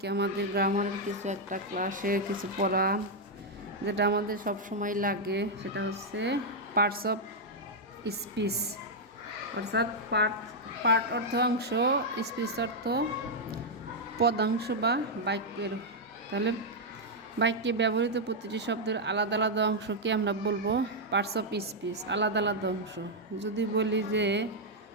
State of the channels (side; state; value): both; normal; correlation -0.03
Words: আমাদের গ্রামারের কিছু একটা ক্লাসে কিছু পড়া যেটা আমাদের সব সময় লাগে, সেটা হচ্ছে পার্টস অফ স্পিচ, অর্থাৎ পার্ট অর্থ অংশ, স্পিচ অর্থ পদাংশ বা বাক্যের। তাহলে বাক্যে ব্যবহৃত প্রতিটি শব্দের আলাদা আলাদা অংশকে আমরা বলবো পার্টস অফ স্পিচ, আলাদা আলাদা অংশ। যদি বলি যে